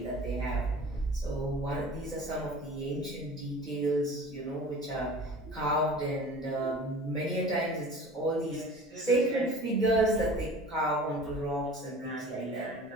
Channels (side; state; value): both; normal; correlation 0.42